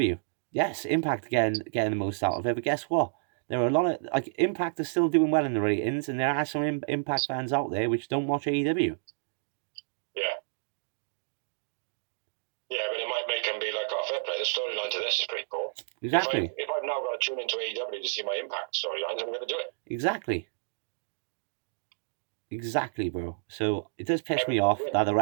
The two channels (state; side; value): silent; left; digital silence